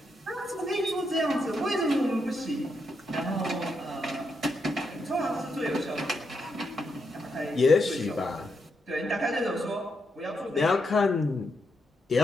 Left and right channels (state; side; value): normal; both; correlation 0.81